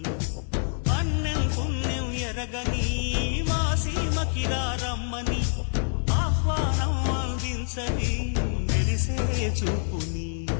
అన్నం పుణ్యం ఎరగని మా సీమకిరా రమ్మని ఆహ్వానం అందించని మెరిసే చూపుని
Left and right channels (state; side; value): silent; right; digital silence